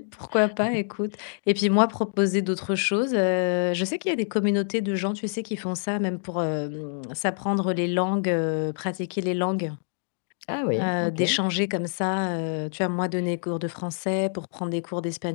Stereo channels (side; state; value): right; silent; digital silence